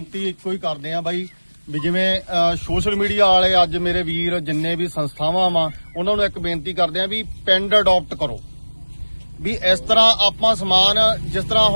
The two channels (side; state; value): both; inverted; correlation -1.00